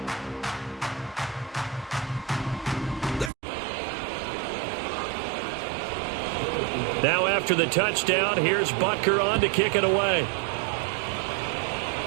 Now after the touchdown, here's Butker on to kick it away.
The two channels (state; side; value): drops out; left; at 3.3 s